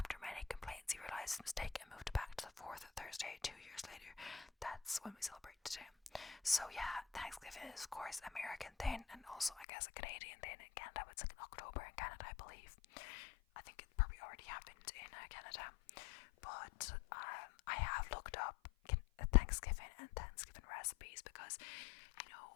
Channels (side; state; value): right; drops out; at 9.7 s